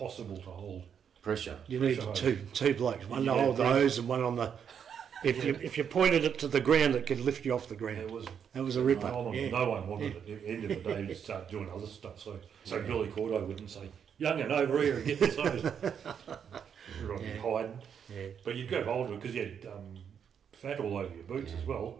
to hold. Pressure. You needed Pressure two blokes, one to Yeah, hold the breathe. hose and one on the If you pointed it to the ground, it could lift you off the ground. That was a ripper. No one wanted it. At the end of the day, you start doing other stuff. So Billy Cordo wouldn't say, "Young'un, over here and get this hose." Everyone hiding. Yeah. But you'd grab hold of it because you had fat all over your boots as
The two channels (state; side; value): quieter; left; 7.7 dB